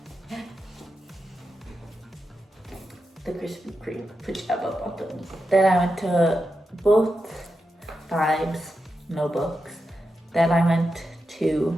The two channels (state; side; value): normal; both; correlation 0.88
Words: the Krispy Kreme pajama bottoms. Then I went to both Vibes, no books. Then I went